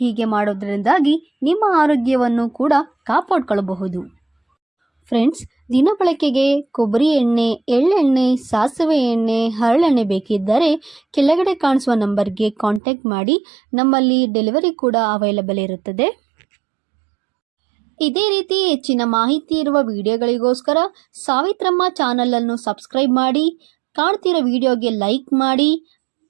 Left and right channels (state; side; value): drops out; left; at 12.8 s